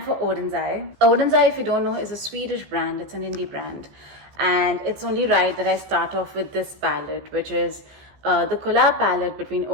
for Oden's Eye. Oden's Eye, if you don't know, is a Swedish brand. It's an indie brand. And it's only right that I start off with this palette, which is the collab palette between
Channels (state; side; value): late; left; 15 ms